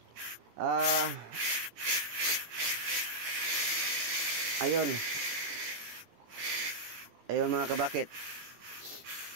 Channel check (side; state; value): left; late; 18 ms